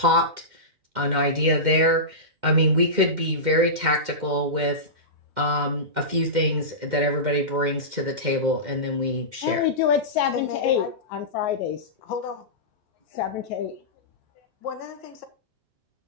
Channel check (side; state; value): left; late; 2.1 ms